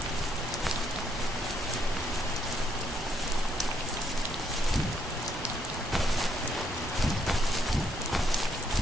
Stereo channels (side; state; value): both; normal; correlation 0.73